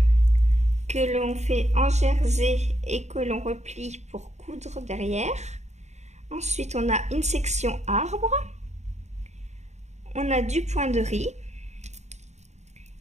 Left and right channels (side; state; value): left; late; 0.33 ms